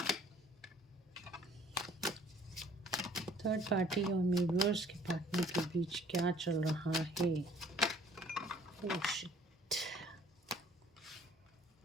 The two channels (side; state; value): both; normal; correlation 0.56